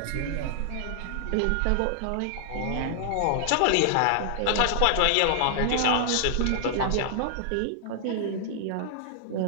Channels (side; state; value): both; different; correlation -0.01